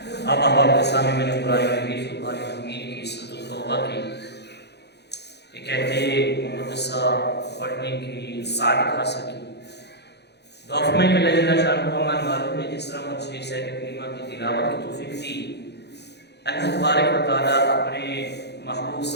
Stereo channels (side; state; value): right; late; 0.49 ms